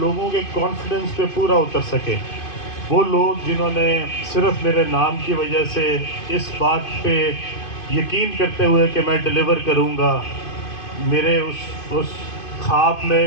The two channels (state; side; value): late; right; 2.5 ms